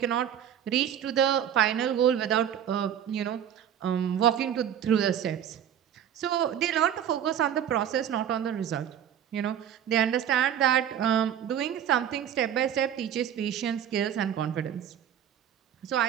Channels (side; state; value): left; quieter; 9.7 dB